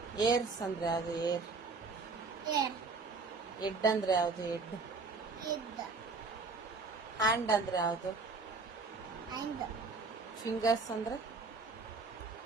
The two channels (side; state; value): left; quieter; 4.1 dB